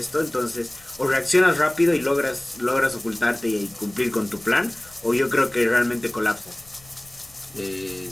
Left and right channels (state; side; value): noise; left; rumble, 26 dB below the sound